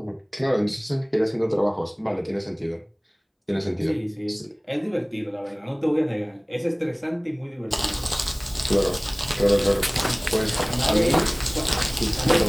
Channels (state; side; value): identical; both; correlation 1.00